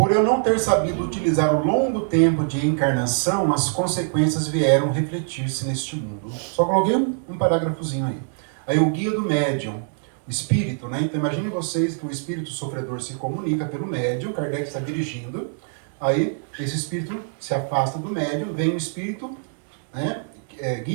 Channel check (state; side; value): silent; left; digital silence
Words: eu não ter sabido utilizar o longo tempo de encarnação, as consequências vieram refletir-se neste mundo. Só coloquei um parágrafozinho aí. Aí o guia do médium. espírito, né? Então imagine vocês que o espírito sofredor se comunica pelo médium, Kardec está dirigindo, aí esse espírito se afasta do médium, vem um espírito, né,